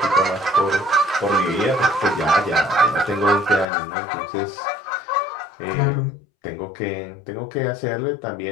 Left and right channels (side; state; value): right; drops out; at 3.7 s